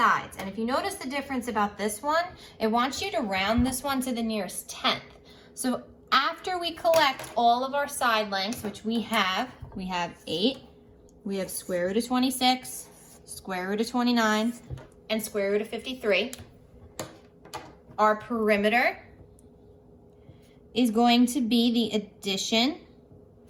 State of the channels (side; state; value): both; identical; correlation 1.00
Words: And if you notice the difference about this one, it wants you to round this one to the nearest tenth. So after we collect all of our side lengths, which we have 8, we have square root of 26, square root of 29, and square root of 53. Our perimeter is going to be the addition